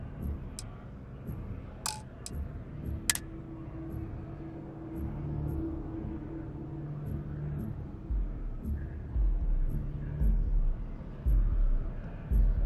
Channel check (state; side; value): identical; both; correlation 1.00